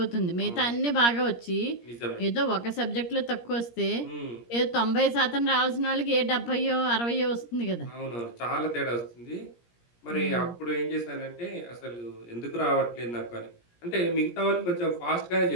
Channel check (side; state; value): right; late; 17 ms